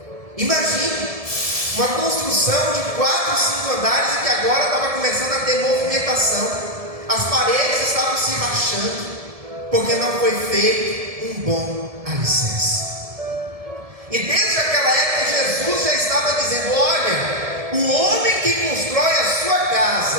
Imagine uma construção de 4, 5 andares e que agora estava começando a ter movimentação. As paredes estavam se rachando, porque não foi feito um bom alicerce. E desde aquela época Jesus já estava dizendo: olha, o homem que constrói a sua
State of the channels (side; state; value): left; late; 1.7 ms